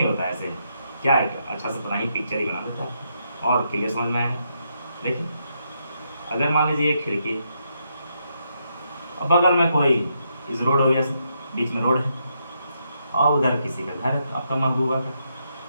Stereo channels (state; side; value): inverted; both; correlation -0.80